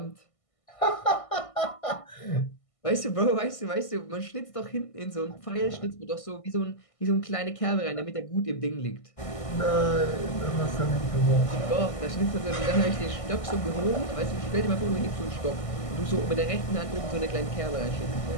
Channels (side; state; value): right; late; 1.6 ms